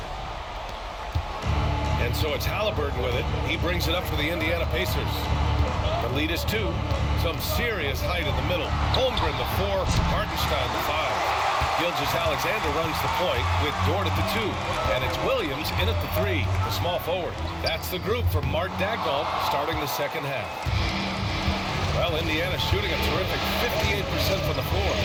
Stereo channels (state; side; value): identical; both; correlation 1.00